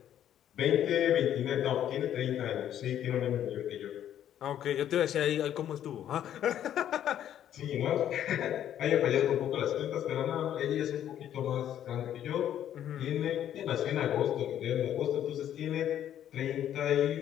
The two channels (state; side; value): quieter; right; 10.7 dB